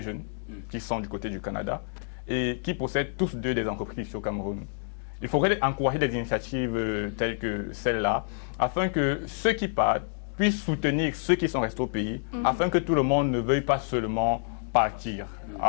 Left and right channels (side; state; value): right; silent; digital silence